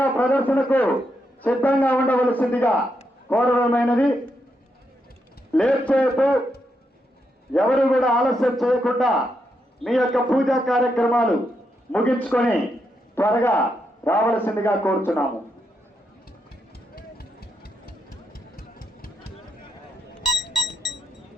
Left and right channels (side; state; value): both; normal; correlation 0.82